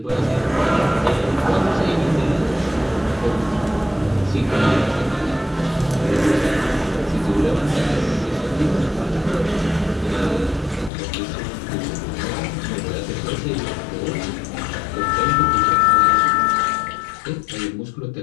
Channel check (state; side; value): drops out; right; at 10.9 s